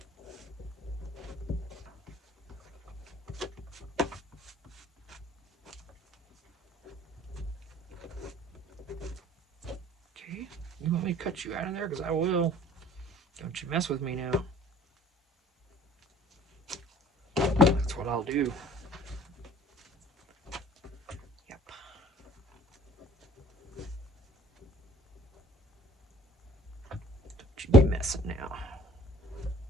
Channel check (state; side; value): normal; both; correlation 0.52